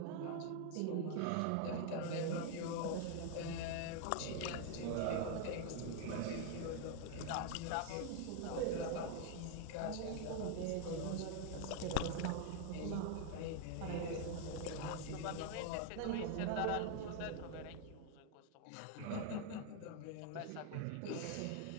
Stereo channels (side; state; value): both; different; correlation 0.00